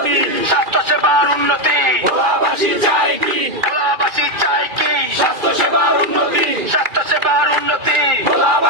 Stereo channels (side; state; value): left; late; 2.4 ms